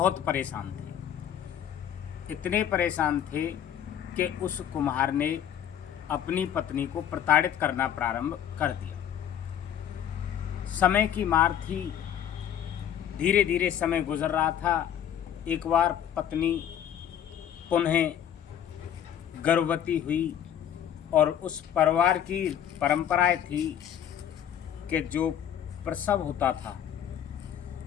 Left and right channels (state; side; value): quieter; right; 9.8 dB